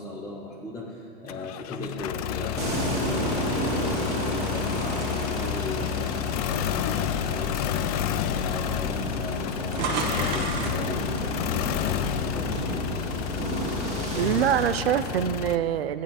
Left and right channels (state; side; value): normal; both; correlation 0.05